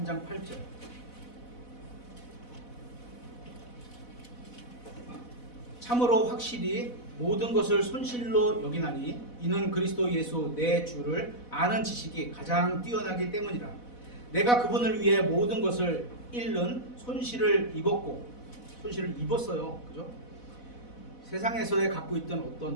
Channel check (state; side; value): late; right; 4.1 ms